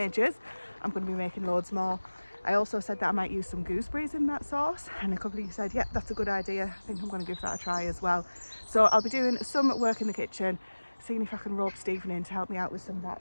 I'm going to be making loads more. I also said that I might use some gooseberries in that sauce, and a couple of you said, yeah, that's a good idea. I think I'm going to give that a try as well. So I'll be doing some work in the kitchen, seeing if I can rope Stephen in to help me out with some of that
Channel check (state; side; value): inverted; both; correlation -1.00